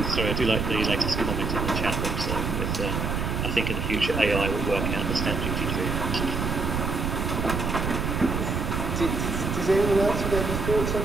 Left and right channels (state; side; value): noise; right; rumble, 1 dB below the sound